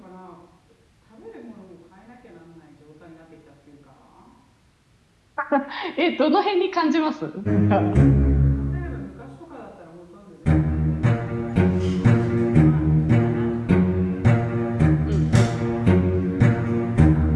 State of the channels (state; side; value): identical; both; correlation 1.00